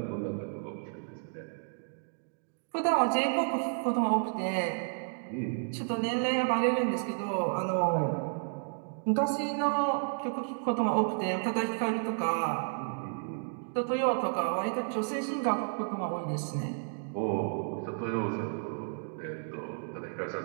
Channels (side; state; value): left; silent; digital silence